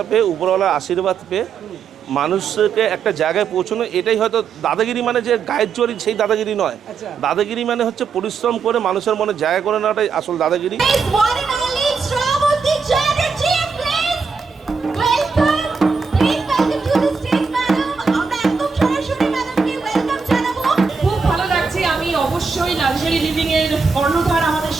পেয়ে, উপরওয়ালার আশীর্বাদ পেয়ে মানুষকে একটা জায়গায় পৌঁছানো, এটাই হয়তো দাদাগিরি মানে যে গায়ের জোর সেই দাদাগিরি নয়। দাদাগিরি মানে হচ্ছে পরিশ্রম করে মানুষের মনে জায়গা করে নেওয়াটাই আসল দাদাগিরি। লাক্সারি লিভিং এর কর্ণধার আমাদের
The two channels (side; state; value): left; quieter; 5.3 dB